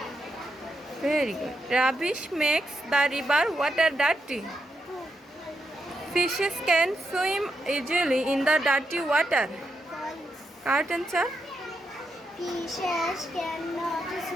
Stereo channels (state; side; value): normal; both; correlation 0.83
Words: Very good. Rubbish makes the river water dirty. True. Fishes can swim easily in the dirty water. False. Correct answer. Fishes cannot